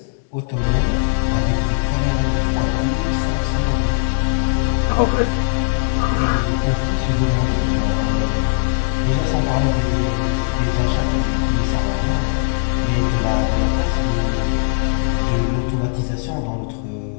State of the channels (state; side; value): silent; right; 66 dB below the other